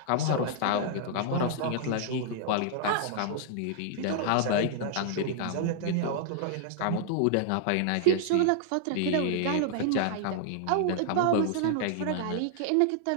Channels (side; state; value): both; different; correlation -0.01